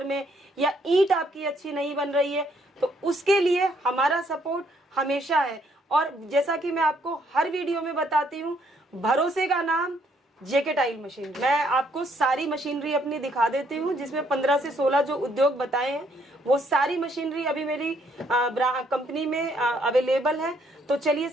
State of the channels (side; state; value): both; normal; correlation 0.69